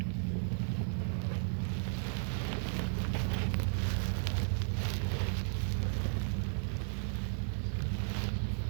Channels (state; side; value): silent; left; 55 dB below the other